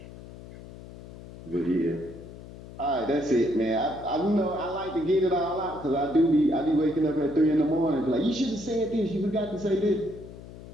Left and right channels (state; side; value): noise; left; hum, 16 dB below the sound